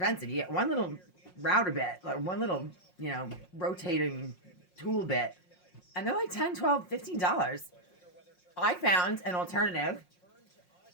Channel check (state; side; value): late; right; 5.5 ms